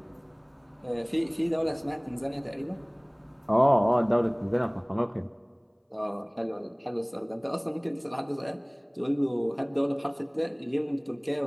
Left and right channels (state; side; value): identical; both; correlation 1.00